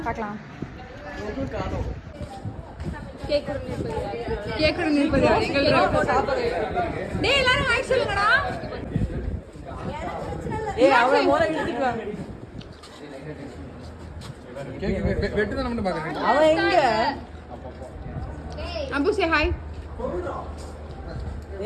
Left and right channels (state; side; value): identical; both; correlation 1.00